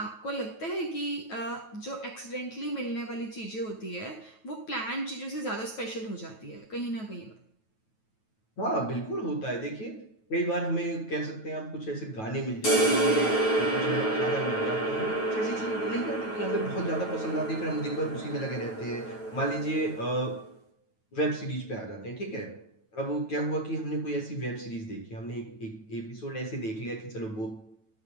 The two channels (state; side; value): late; right; 9.2 ms